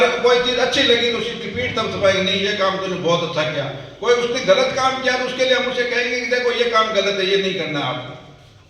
को कोई चीज अच्छी लगी तो उसकी पीठ तब छपाएंगे, नहीं ये काम तूने बहुत अच्छा किया। कोई उसने गलत काम किया तो उसके लिए हम उसे कहेंगे कि देखो ये काम गलत है, ये नहीं करना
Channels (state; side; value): identical; both; correlation 1.00